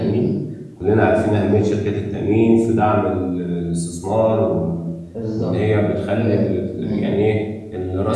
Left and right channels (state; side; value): identical; both; correlation 1.00